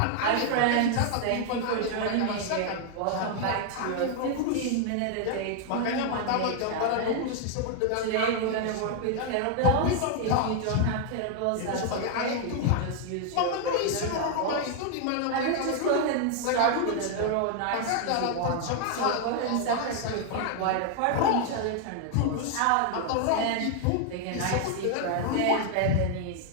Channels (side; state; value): both; different; correlation 0.00